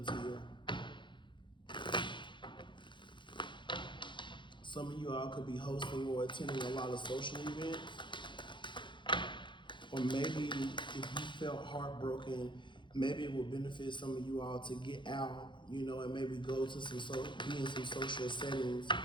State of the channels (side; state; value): right; late; 0.23 ms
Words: here. Some of you all could be hosting or attending a lot of social events. Or maybe if you felt heartbroken, maybe it would benefit some of you all to get out, you know, and maybe go to be in some social settings.